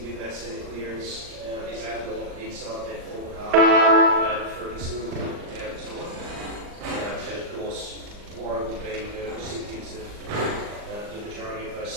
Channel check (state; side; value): late; left; 39 ms